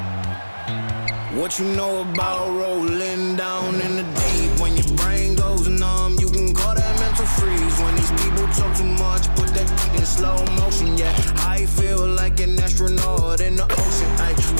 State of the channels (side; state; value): both; inverted; correlation -1.00